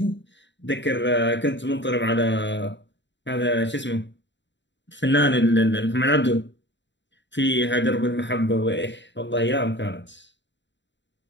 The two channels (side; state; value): right; late; 0.52 ms